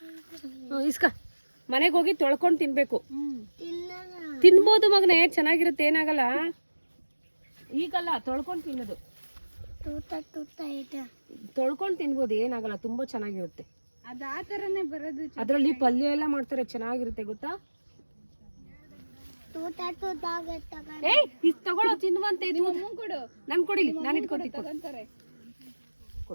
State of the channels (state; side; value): inverted; both; correlation -1.00